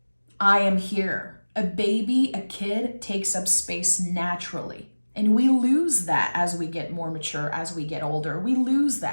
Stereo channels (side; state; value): both; inverted; correlation -1.00